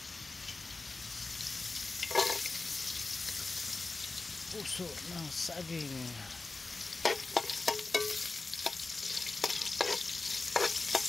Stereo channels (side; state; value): right; quieter; 3.6 dB